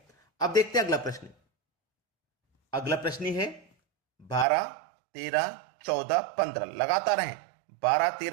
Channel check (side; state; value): left; drops out; at 4.5 s